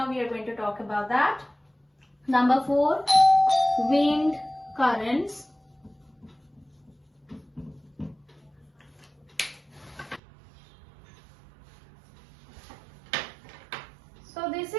we are going to talk about that. Number 4, wind currents. So this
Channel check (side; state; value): left; drops out; at 10.2 s